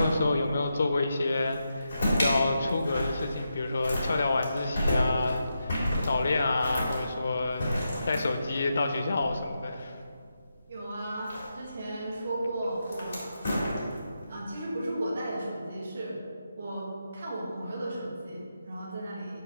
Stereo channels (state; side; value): inverted; both; correlation -0.86